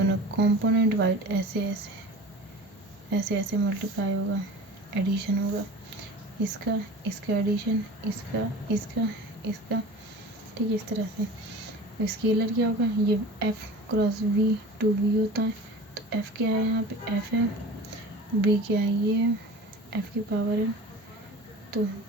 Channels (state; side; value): normal; both; correlation 0.38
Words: कंपोनेंट वाइड ऐसे ऐसे ऐसे मल्टीप्लाई होगा, एडिशन होगा, इसका इसका एडिशन, इसका इसका इसका, ठीक है, इस तरह से। स्केलर क्या होगा, ये f cross v to v होता है। तो f क्या है, यहाँ पे f है, v क्या है, ये है, f की पावर है, तो